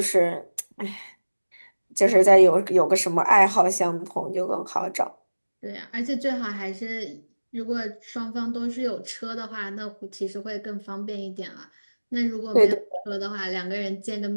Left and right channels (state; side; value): inverted; both; correlation -1.00